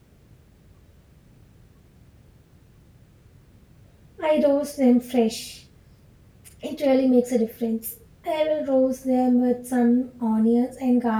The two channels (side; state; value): both; identical; correlation 1.00